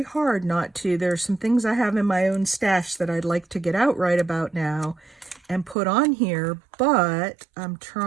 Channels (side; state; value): left; drops out; at 5.8 s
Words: hard not to. There are some things I have in my own stash that I'd like to get out right about now and put on here, but I'm